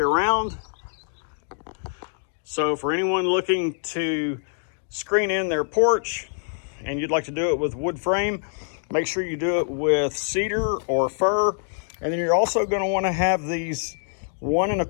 So for anyone looking to screen in their porch and you'd like to do it with wood frame, make sure you do it with cedar or fir. And then you're also going to want to have these 1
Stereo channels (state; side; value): silent; right; 62 dB below the other